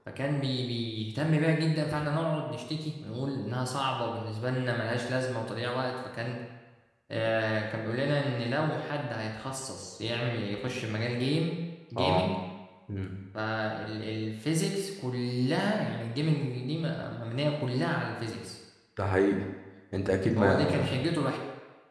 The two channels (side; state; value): both; identical; correlation 1.00